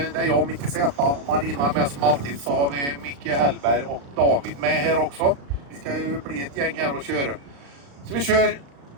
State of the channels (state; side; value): late; left; 35 ms